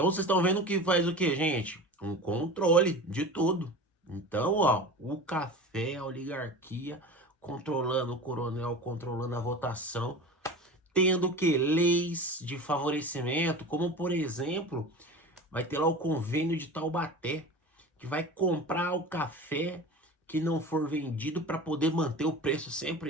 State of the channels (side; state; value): both; normal; correlation 0.33